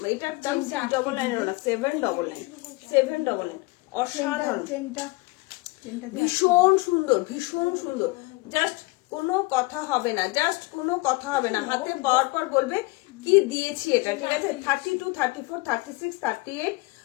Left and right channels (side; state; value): right; quieter; 23.4 dB